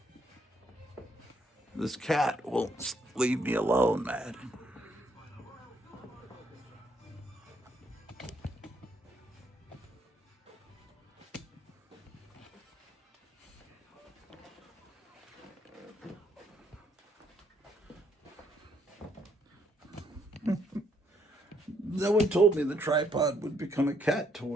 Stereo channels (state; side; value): normal; both; correlation 0.71